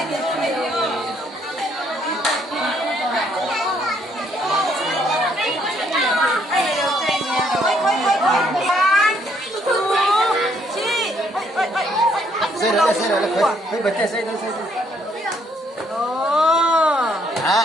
Xây rồi, phải bật xây rồi. À.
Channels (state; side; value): normal; both; correlation 0.69